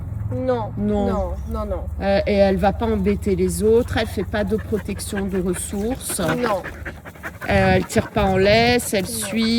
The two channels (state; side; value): identical; both; correlation 1.00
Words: Non, Non. non, non, non. Et elle va pas embêter les autres, elle fait pas de protection de ressources. Non, Elle tire pas en laisse, elle Non.